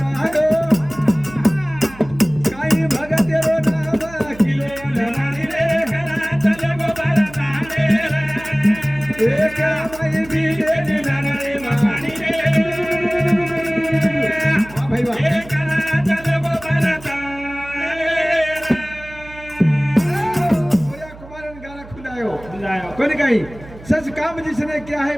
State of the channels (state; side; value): noise; right; hum, 18 dB below the sound